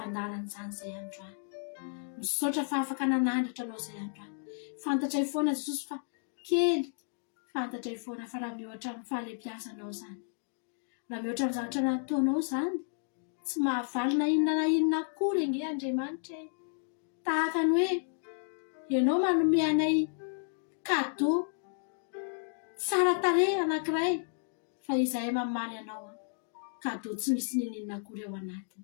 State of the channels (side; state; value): right; silent; digital silence